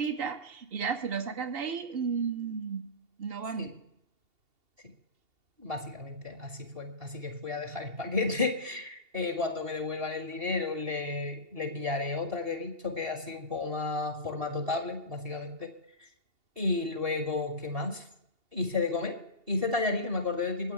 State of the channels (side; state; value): left; late; 2.7 ms